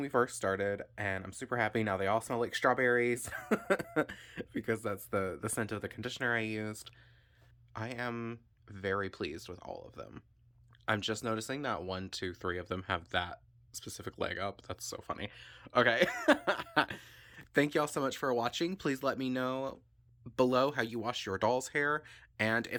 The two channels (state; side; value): identical; both; correlation 1.00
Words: first started, and I'm super happy. Now they all smell like strawberries because that's the scent of the conditioner I used. I am very pleased with all of them. I'm just noticing that one, two, three of them have that specific leg up. That's so funny. Okay. Thank y'all so much for watching. Please let me know below how you wash your doll's hair and